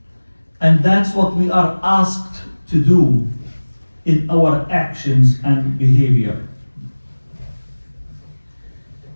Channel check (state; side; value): inverted; both; correlation -1.00